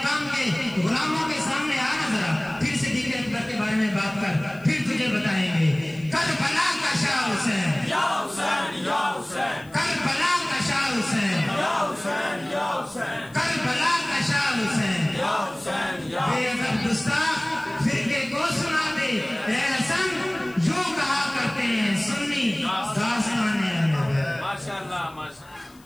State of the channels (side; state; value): left; noise; hiss, 28 dB below the sound